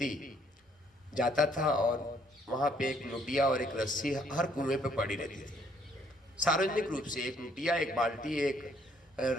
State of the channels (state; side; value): normal; both; correlation 0.66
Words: जाता था और वहाँ पे एक लुटिया और एक रस्सी हर कुएं पे पड़ी रहती थी। सार्वजनिक रूप से एक लुटिया, एक बाल्टी, एक